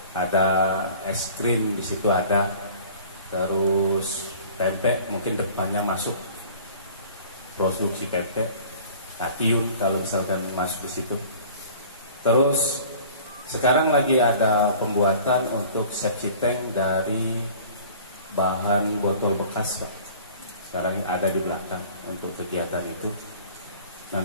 Ada es krim di situ ada, terus tempe mungkin depannya masuk produksi tempe, Tatiun kalau misalkan masuk di situ. Terus sekarang lagi ada pembuatan untuk septic tank dari bahan botol bekas Pak. Sekarang ada di belakang untuk kegiatan itu.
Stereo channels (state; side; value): inverted; both; correlation -0.46